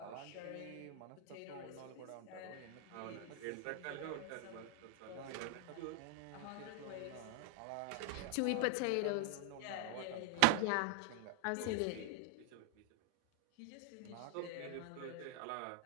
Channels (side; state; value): both; different; correlation 0.00